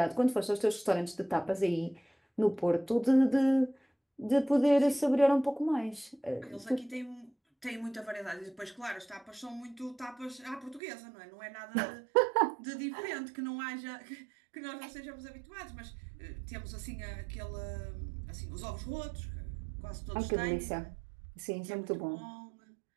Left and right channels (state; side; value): drops out; left; at 10.8 s